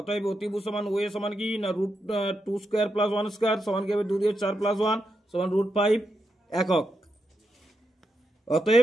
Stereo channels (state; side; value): normal; both; correlation 0.85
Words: অতিভুজ সমান ও এ সমান কি না √2 স্কয়ার প্লাস 1 স্কয়ার সমান কি হবে 2 দিয়ে 4 প্লাস 1 সমান √5 একক।